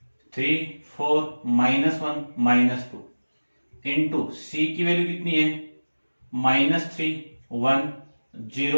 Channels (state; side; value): inverted; both; correlation -1.00